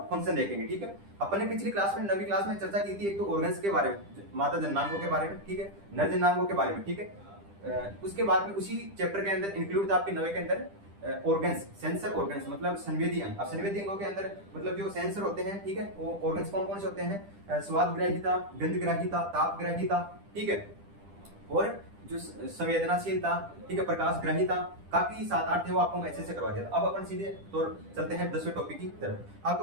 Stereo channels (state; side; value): late; left; 10 ms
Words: फंक्शन देखेंगे। ठीक है, अपन ने पिछली क्लास में 9वीं क्लास में चर्चा की थी एक तो ऑर्गन्स के बारे में, मादा जननांगों के बारे में, ठीक है, नर जननांगों के बारे में। ठीक है, उसके बाद में उसी चैप्टर के अंदर इंक्लूड था आपके 9वीं के अंदर ऑर्गन्स, सेंसर ऑर्गन्स मतलब संवेदी अंग। अब संवेदी अंगों के अंदर मतलब जो सेंसर होते हैं, ठीक है, वो ऑर्गन्स कौन कौन से होते हैं? स्वाद ग्राहिता, गंध ग्राहिता, ताप ग्राहिता, ठीक है, और जो संवेदनाशीलता, ठीक है, प्रकाश ग्राहिता, काफी 7-8 थे, वो आपको मैं अच्छे से करवा दिया था। अब अपन सीधे तौर चलते हैं 10वें टॉपिक की तरफ। आप